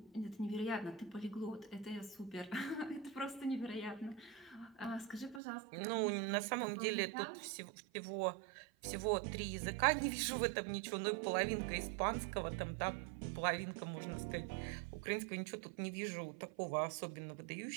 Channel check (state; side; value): drops out; left; at 5.4 s